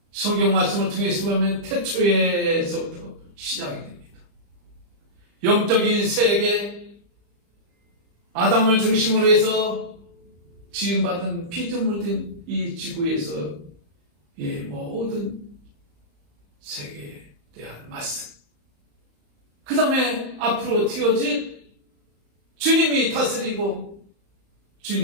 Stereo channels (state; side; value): late; left; 35 ms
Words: 성경 말씀을 통해서 보면 태초에서부터 시작이 됩니다. 영적인 세계, 아담을 중심으로 해서 지음받은 피조물 된 이 지구에서 모든 세계에 대한 말씀, 그 다음에 앞으로 튀어질 주님이 다스리고